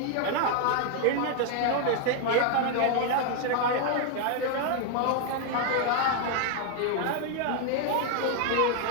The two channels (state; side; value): different; both; correlation 0.00